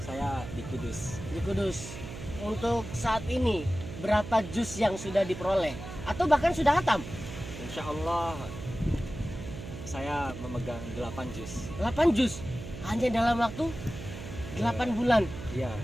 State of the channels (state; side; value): noise; right; hum, 10 dB below the sound